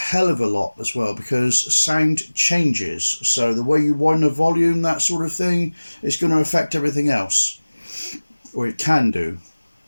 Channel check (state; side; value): inverted; both; correlation -1.00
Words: of a lot as well, because sound changes. So the way you wind the volume, that sort of thing, is going to affect everything else, or it can do.